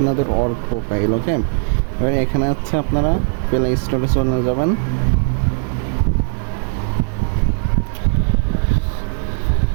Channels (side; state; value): left; silent; 57 dB below the other